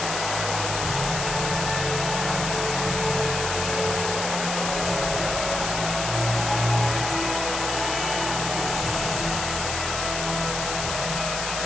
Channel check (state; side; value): noise; left; hiss, 4 dB below the sound